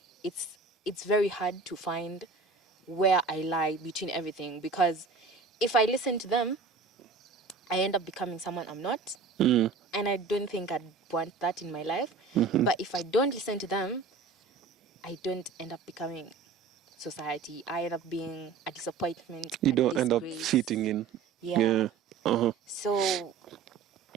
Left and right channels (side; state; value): left; quieter; 4.8 dB